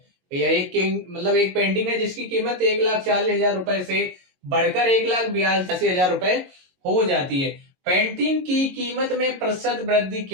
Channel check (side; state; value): left; late; 22 ms